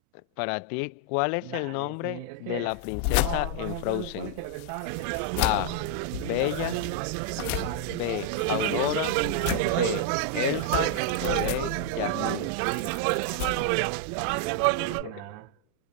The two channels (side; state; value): both; different; correlation 0.00